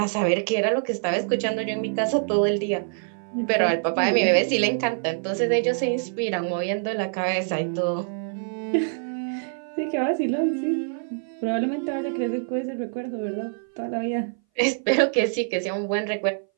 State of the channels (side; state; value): left; silent; 59 dB below the other